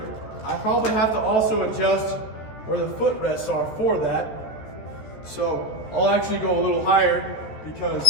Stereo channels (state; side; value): late; right; 14 ms